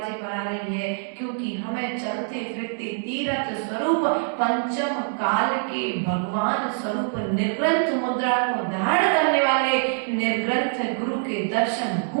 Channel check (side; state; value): left; silent; digital silence